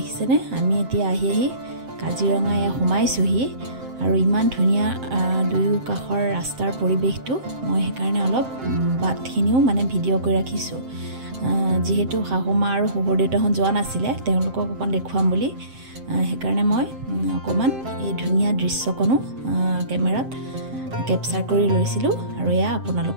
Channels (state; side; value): late; left; 7.6 ms